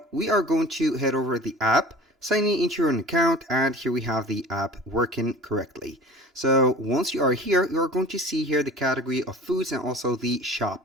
we are going to head over the app, signing into your account, and here we have the app working correctly. So once you are here, you are going to see here the category of foods and also the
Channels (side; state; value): both; normal; correlation 0.41